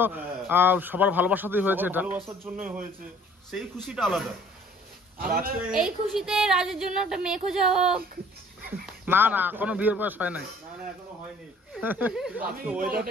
হ্যাঁ। সবার ভালোবাসাতেই হয়েছে সবার এটা। ভালোবাসার জন্যই হয়েছে, সেই খুশিটা আলাদা। আর আজকে এই খুশিতে রাজের জন্য একটা মেয়ে খোঁজা হোক। না না কোনো বিয়ের বয়স হয় নাই। না না এখনো হয়নি। আমি আজকে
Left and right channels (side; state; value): both; normal; correlation 0.54